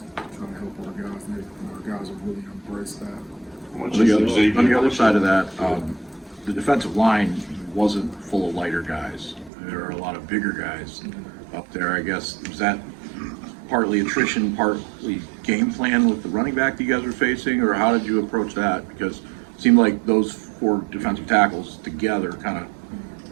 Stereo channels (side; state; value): left; drops out; at 9.5 s